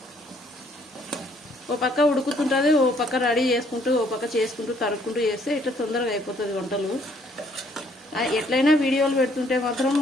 ఓ పక్క ఉడుకుతుంటుంది, ఓ పక్క రెడీ చేసుకుంటూ ఓ పక్క చేసుకుంటూ తరుక్కుంటూ చేస్తే ఇట్లా తొందరగా అయిపోతుంది వంటలు. ఎట్లయినా వీడియోలు పెడుతుంటే మాత్రం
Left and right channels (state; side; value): normal; both; correlation 0.65